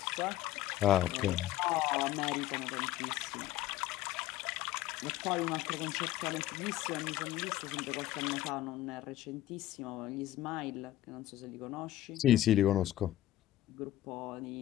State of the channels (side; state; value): right; quieter; 14.1 dB